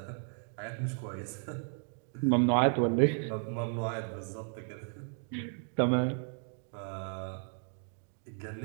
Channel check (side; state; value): left; silent; 55 dB below the other